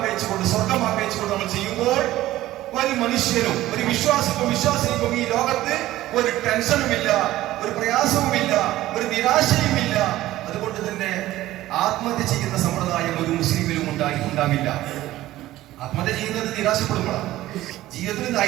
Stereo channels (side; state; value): left; quieter; 15.5 dB